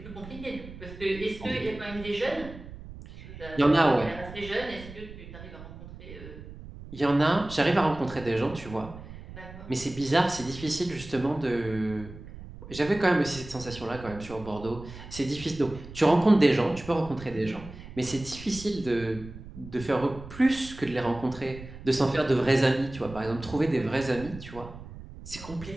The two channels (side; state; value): right; noise; rumble, 14 dB below the sound